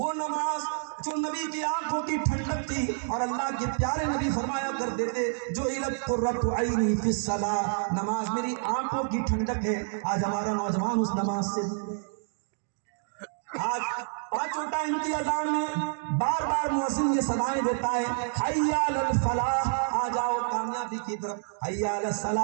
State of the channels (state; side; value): silent; left; digital silence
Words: نماز جو نبی کی آنکھوں کی ٹھنڈک تھی، اور اللہ کے پیارے نبی فرمایا کرتے تھے جو علت قرۃ عینی فی الصلاۃ، نماز میری آنکھوں کی ٹھنڈک ہے. آج ہمارا نوجوان اس نماز سے آج پانچوں ٹائم کی اذان میں بار بار مؤذن یہ صدائیں دیتا ہے، حی علی الفلاح، آ جاؤ کامیابی کی طرف، حی علی